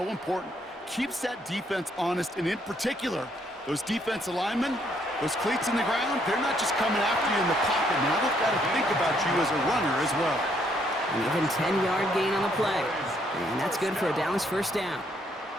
important. Keeps that defense honest, and in particular, those defensive linemen, those cleats in the ground, they're not just coming after you in the pocket. Now they've got to think about you as a runner as well. And even 10-yard gain on the play. And that's good for a Dallas first down.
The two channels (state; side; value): normal; both; correlation 0.70